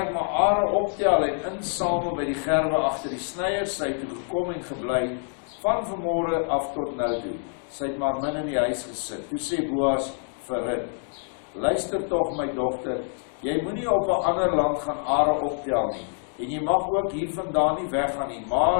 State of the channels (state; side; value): silent; right; 61 dB below the other